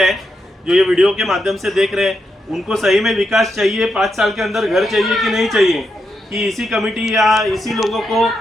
जो ये वीडियो के माध्यम से देख रहे हैं, उनको सही में विकास चाहिए, 5 साल के अंदर घर चाहिए कि नहीं चाहिए, कि इसी कमेटी या इसी लोगों को,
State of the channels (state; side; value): normal; both; correlation 0.84